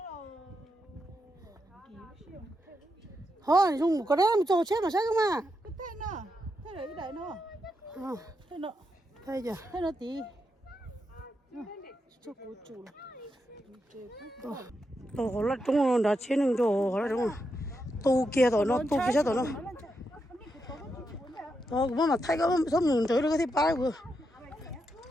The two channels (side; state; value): both; normal; correlation 0.84